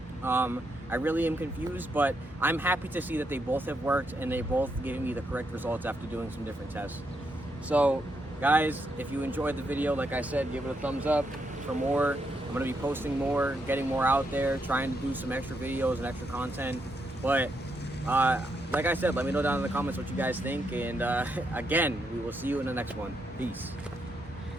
I really am confused, but I'm happy to see that they both have worked and they both gave me the correct results after doing some different tests. So guys, if you enjoyed the video, like I said, give it a thumbs up for more. I'm going to be posting more, getting more out there, trying to do some extra videos and extra content. But like I said, let me know down in the comments what you guys think. And again, we will see you in the next one. Peace.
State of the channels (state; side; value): normal; both; correlation 0.79